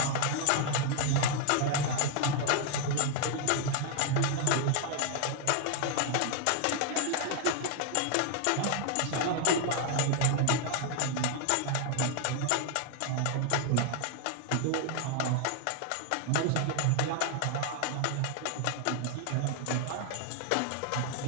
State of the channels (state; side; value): different; both; correlation 0.00